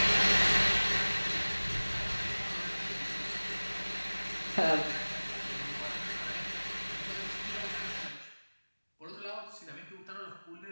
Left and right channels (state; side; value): inverted; both; correlation -1.00